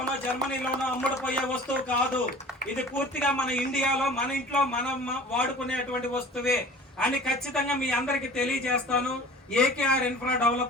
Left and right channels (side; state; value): both; normal; correlation 0.43